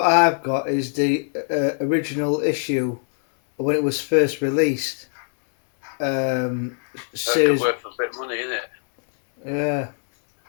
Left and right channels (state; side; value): silent; right; digital silence